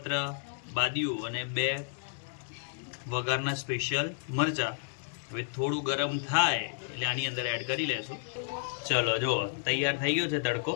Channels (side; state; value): right; silent; digital silence